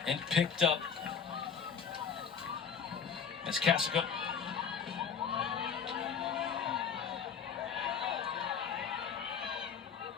And picked up. As Cassica.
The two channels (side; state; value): right; quieter; 6.8 dB